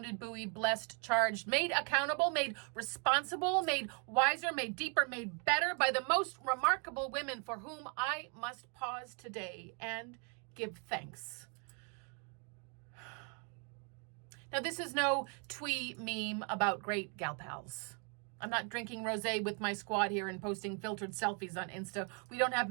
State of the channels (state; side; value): quieter; left; 37.8 dB